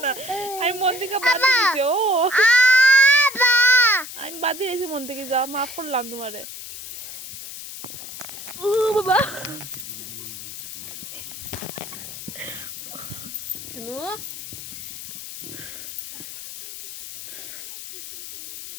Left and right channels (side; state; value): left; noise; hiss, 11 dB below the sound